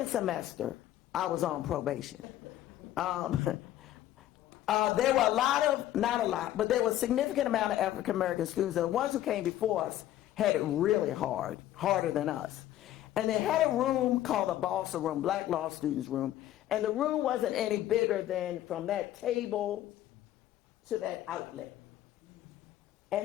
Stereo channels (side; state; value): right; quieter; 13.1 dB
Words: semester, I was on probation. There were a lot of, not a lot, but there was a significant amount of African American students, and the ones who came before us had it really hard, harder than us. And they had a room called the Balsa Room, Black Law Students Room, and the room wasn't any bigger than from that table to that outlet.